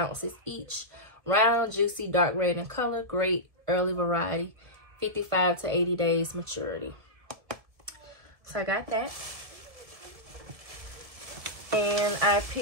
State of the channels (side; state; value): left; late; 1.7 ms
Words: each. Round, juicy, dark red in color. Great early variety. 55 to 80 days maturity. So I got that. And I